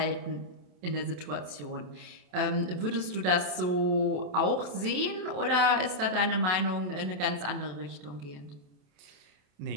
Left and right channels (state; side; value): late; left; 28 ms